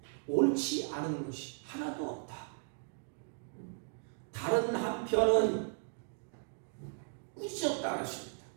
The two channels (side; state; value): left; silent; 54 dB below the other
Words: 옳지 않은 것이 하나도 없다. 다른 한편은 꾸짖었다 하십니다.